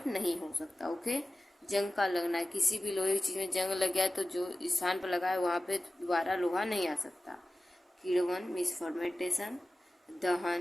नहीं हो सकता। ओके, जंग का लगना, किसी भी लोहे की चीज़ में जंग लग गया तो जो स्थान पर लगा है वहाँ पे दोबारा लोहा नहीं आ सकता। किण्वन मीन्स फर्मेंटेशन,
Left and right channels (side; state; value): both; normal; correlation 0.95